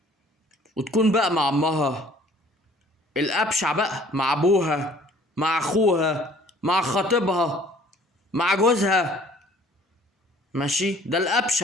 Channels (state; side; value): normal; both; correlation 0.54